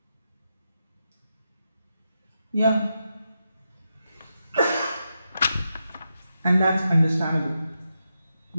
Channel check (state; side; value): inverted; both; correlation -0.86